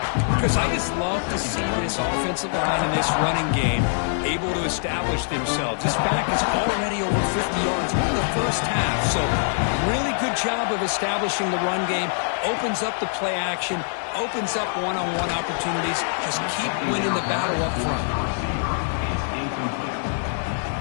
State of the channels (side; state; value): right; silent; digital silence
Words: Because I just love to see this offensive line in this running game able to establish themselves. This back is already over 50 yards in the first half, so really good job of establishing the run game, opens up the play action, opens up one-on-one opportunities. Just keep winning the battle up front.